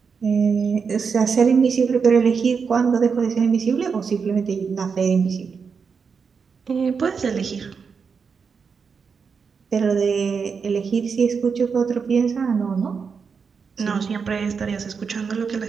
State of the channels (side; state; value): left; quieter; 5.8 dB